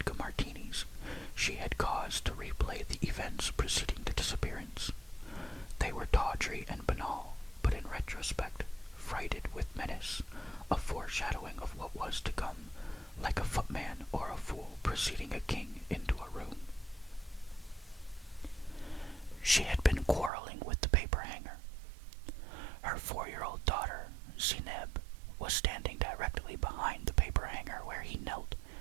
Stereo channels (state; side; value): drops out; left; at 20.3 s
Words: martinis, she had cause to replay the events preceding the disappearance. They were tawdry and banal, but in retrospect, freighted with menace, a foreshadowing of what was to come, like a footman or a fool preceding a king into a room. She had been quarreling with the paper hanger. Her 4-year-old daughter, Zineb, was standing directly behind the paper hanger where he knelt,